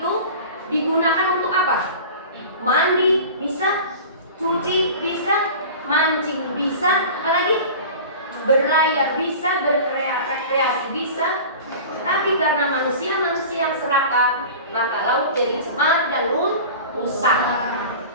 digunakan untuk apa? Mandi, berlayar bisa, berrekreasi bisa, tapi karena manusia yang serakah, maka laut jadi cemar dan rusak.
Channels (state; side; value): inverted; both; correlation -0.37